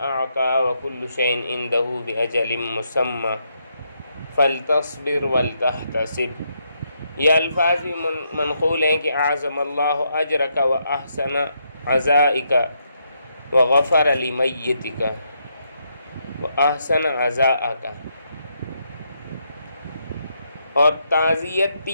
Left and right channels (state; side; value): inverted; both; correlation -0.78